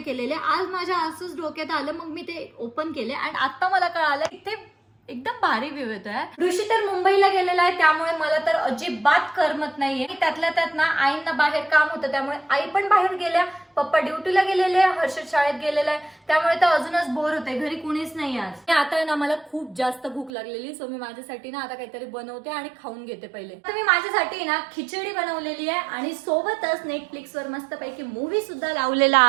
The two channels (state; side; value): drops out; left; at 20.3 s